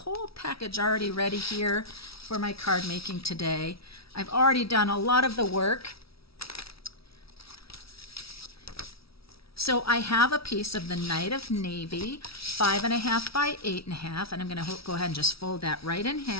package already ready here for my card making today. I've already done a lot of the work. So I have a piece of the Night of Navy, 5.5 by 8.5, and I'm going to go ahead and just fold that right in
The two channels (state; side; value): late; right; 0.76 ms